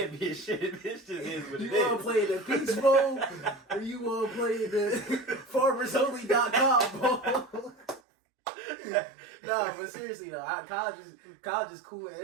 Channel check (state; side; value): drops out; left; at 8.0 s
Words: It just is what it is. You want to play the Peach Bowl or you want to play the FarmersOnly.com Bowl? No, but seriously though, college is cool.